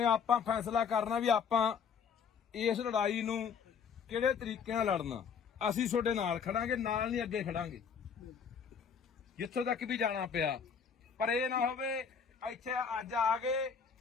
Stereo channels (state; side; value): quieter; right; 6.6 dB